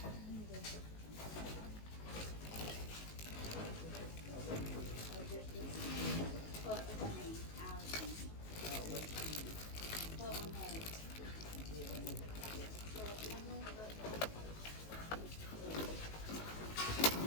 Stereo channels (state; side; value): late; right; 19 ms